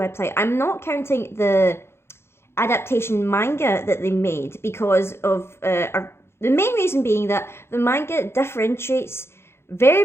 I'm not counting the adaptation manga that they made because of the main reason being that the manga differentiates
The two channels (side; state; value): right; late; 0.12 ms